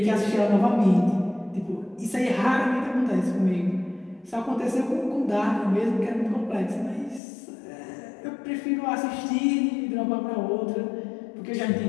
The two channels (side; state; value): right; drops out; at 7.2 s